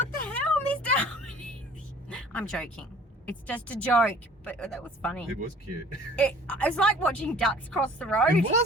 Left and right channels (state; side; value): normal; both; correlation 0.50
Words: the hell, Mr. I'm joking. It's just a joke, but that was funny. It was cute. It's like watching ducks cross the road. It